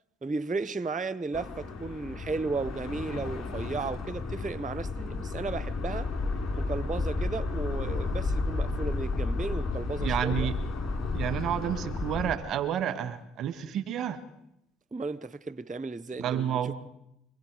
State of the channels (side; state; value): both; normal; correlation 0.69